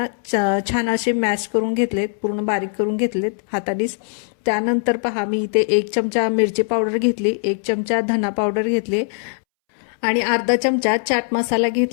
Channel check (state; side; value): silent; right; 65 dB below the other